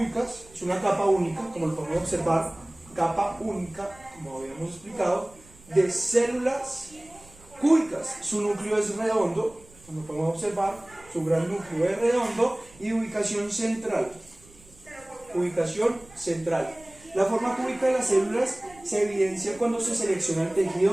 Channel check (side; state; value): right; noise; rumble, 25 dB below the sound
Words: es una capa única, como lo podemos observar, capa única, como habíamos explicado, de células cúbicas. Su núcleo es redondo, como podemos observar, su gran núcleo es redondo y ubicación central. Ubicación central. La forma cúbica de las células se evidencia cuando se selecciona el